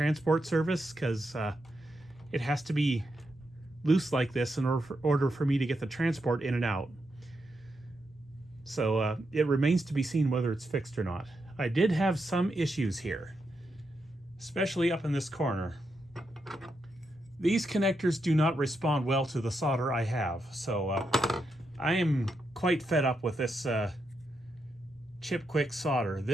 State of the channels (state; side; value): normal; both; correlation 0.84